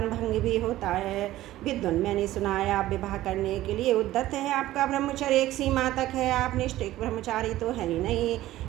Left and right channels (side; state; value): left; quieter; 15.3 dB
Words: भंग भी होता है। विद्वान, मैंने सुना है आप विवाह करने के लिए उद्यत है। आपका ब्रह्मचर्य एक सीमा तक है, आप निष्ठिक ब्रह्मचारी तो है ही नहीं,